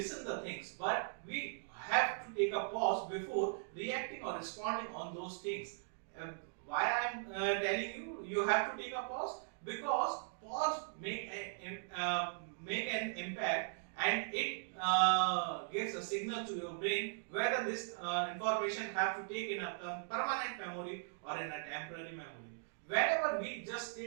the things, but we have to take a pause before reacting or responding on those things. uh, why I'm telling you you have to take a pause? Because pause make an impact, and it gives a signal to your brain whether this information have to take in a permanent memory or in a temporary memory. Whenever we just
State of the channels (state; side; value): silent; left; digital silence